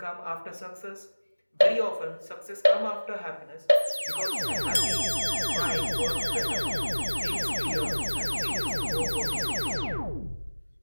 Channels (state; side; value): inverted; both; correlation -1.00